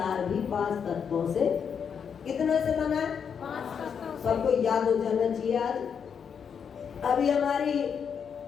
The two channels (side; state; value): right; quieter; 7.1 dB